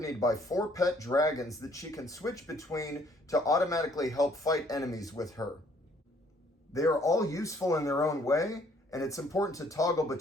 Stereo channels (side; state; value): both; normal; correlation 0.63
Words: by 4 pet dragons that she can switch between to automatically help fight enemies with her. They are all useful in their own way, and it's important to toggle